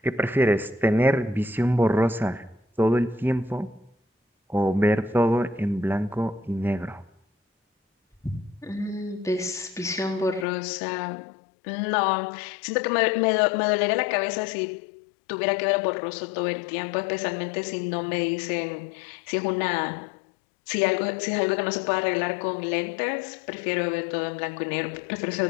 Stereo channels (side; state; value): right; drops out; at 10.5 s